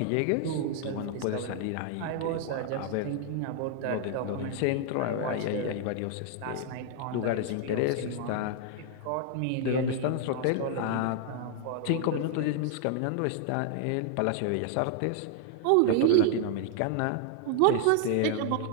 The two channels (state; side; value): different; both; correlation 0.00